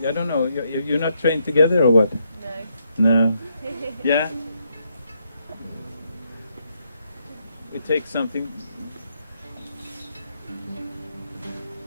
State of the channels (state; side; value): inverted; both; correlation -0.77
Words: I don't know, you're not trained together or what? No. No. Yeah? We take something.